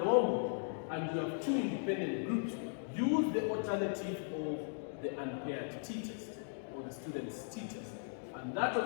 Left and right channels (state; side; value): silent; right; digital silence